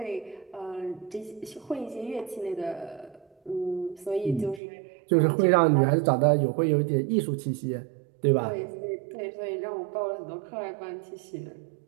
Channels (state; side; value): drops out; left; at 4.6 s